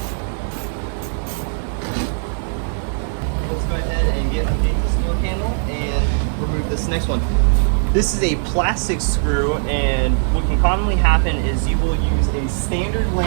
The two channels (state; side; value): silent; left; 63 dB below the other